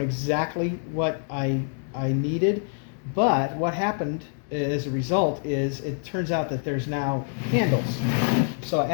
exactly what I needed, but what happened as a result is it turns out that there's now handles. So I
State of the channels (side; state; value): right; silent; 61 dB below the other